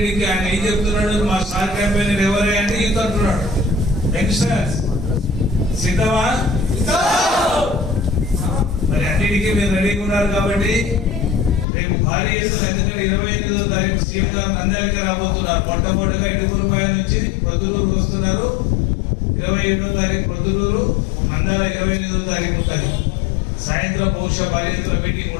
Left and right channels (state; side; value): drops out; right; at 11.7 s